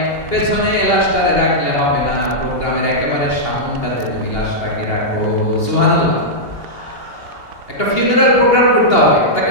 পেছনে লাশটারে রাখলে হবে না, প্রোগ্রামের একেবারে সামনটাতে তুমি লাশটাকে রাখো। সুবহানাল্লাহ। একটা ফিউনারাল প্রোগ্রাম করতে হবে, তাকে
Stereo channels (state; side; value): late; right; 2.8 ms